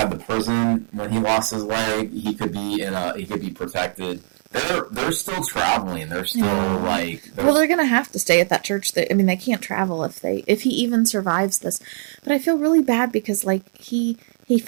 the prison when he lost his leg. He could be protected. They're still traveling. They're still they're gonna have to stay at that church. I mean, they can't travel if he even survives this. But I feel really bad because he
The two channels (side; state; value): left; silent; 65 dB below the other